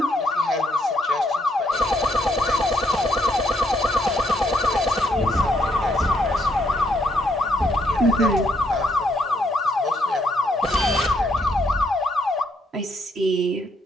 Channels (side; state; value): both; normal; correlation 0.73